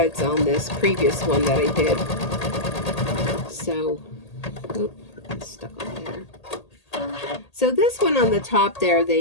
on this previous one that I did. So, oh, it's stuck on there. So this one on the top there,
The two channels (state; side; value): late; right; 1.8 ms